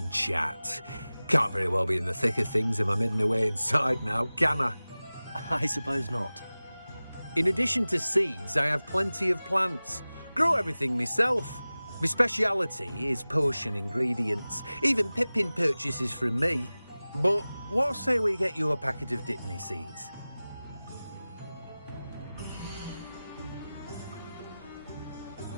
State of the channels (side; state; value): both; inverted; correlation -0.98